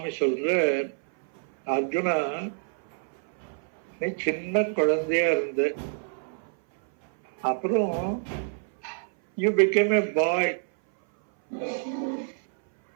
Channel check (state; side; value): silent; left; 58 dB below the other